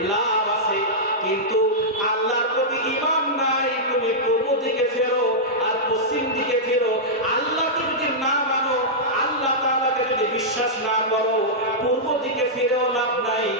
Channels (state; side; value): normal; both; correlation -0.10